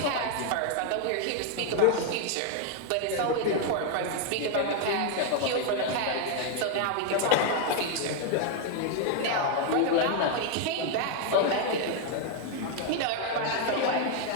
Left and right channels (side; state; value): both; different; correlation 0.00